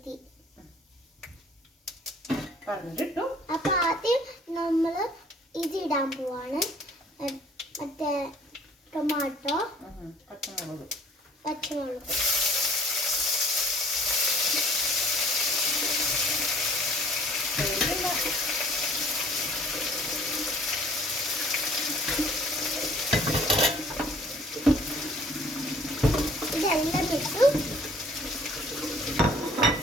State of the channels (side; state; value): both; normal; correlation 0.54